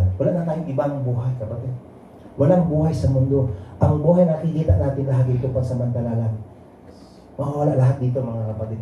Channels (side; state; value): both; identical; correlation 1.00